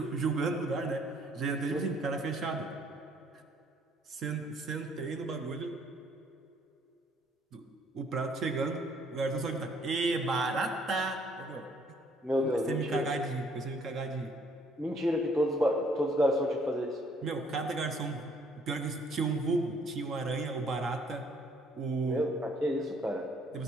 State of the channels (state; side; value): normal; both; correlation 0.63